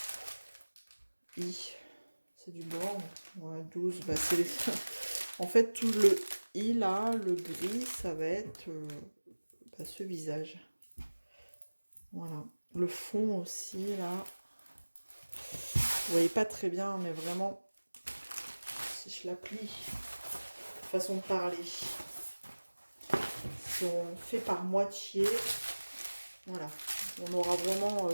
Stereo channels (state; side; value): inverted; both; correlation -1.00